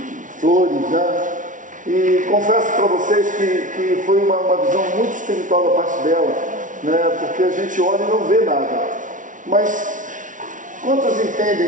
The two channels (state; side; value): late; left; 0.37 ms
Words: flores, né? E confesso para vocês que foi uma visão muito espiritual da parte dela, né? Porque a gente olha e não vê nada. Mas quantos